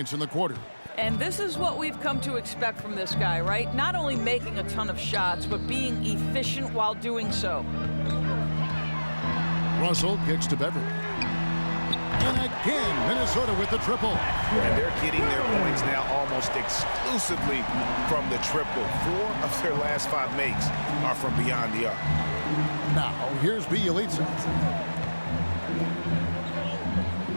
in the quarter. And this is what we've come to expect from this guy, right? Not only making a ton of shots, but being efficient while doing so. Russell kicks to Beverly. And again, Minnesota with the triple. And they're getting their points now almost exclusively from the triple. 4 of their last 5 makes are from beyond the arc. Now, here's Bjelica.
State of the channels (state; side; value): inverted; both; correlation -1.00